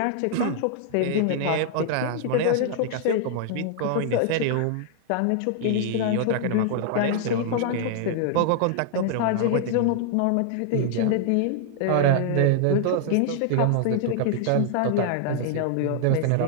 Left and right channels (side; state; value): both; different; correlation 0.00